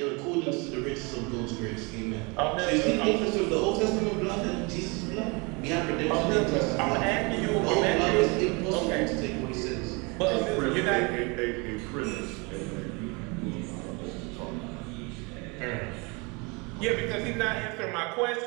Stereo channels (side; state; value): left; quieter; 29.2 dB